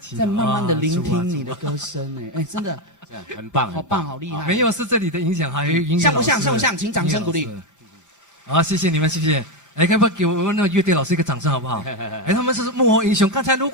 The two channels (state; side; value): late; right; 5.0 ms